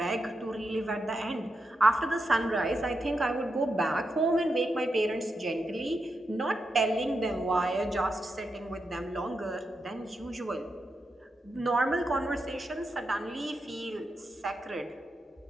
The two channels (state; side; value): normal; both; correlation 0.85